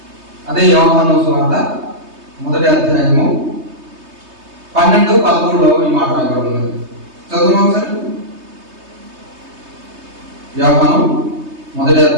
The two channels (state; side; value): late; left; 3.2 ms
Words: అదే యోహాను సువార్త మొదటి అధ్యాయము 12-13లో ఈ మాట రాయబడింది. చదువు ఒకసారి. యోహాను మొదటి